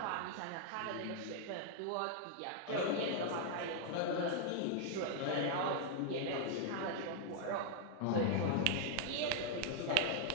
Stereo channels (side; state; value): both; different; correlation 0.00